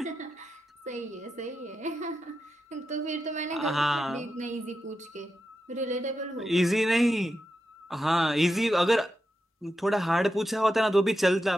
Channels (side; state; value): both; normal; correlation 0.88